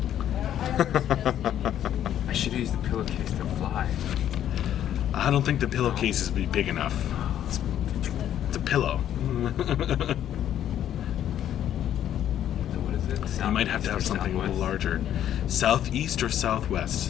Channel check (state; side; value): quieter; right; 10.8 dB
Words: I should use the pillowcase to fly. I don't think the pillowcases would be big enough. It's a pillow. What is it? You might have to have something a little larger. Southeast or